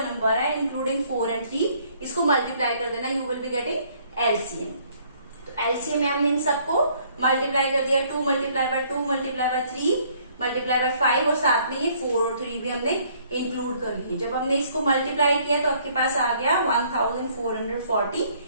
है इंक्लूडिंग 4 एंड 3, इसको मल्टीप्लाई कर देना, you will be getting LCM. तो एलसीएम में हमने इन सबको मल्टीप्लाई कर दिया, 2 multiply by 2 multiply by 3 multiply by 5, और साथ में ये 4 और 3 भी हमने इंक्लूड कर लिए। जब हमने इसको मल्टीप्लाई किया तो आपके पास आ गया 1440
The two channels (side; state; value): both; inverted; correlation -0.62